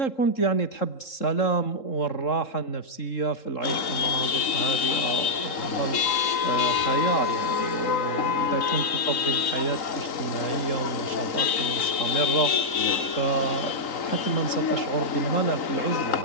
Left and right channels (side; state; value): right; late; 3.9 ms